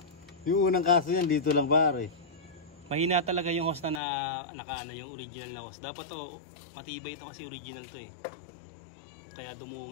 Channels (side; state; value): right; drops out; at 4.0 s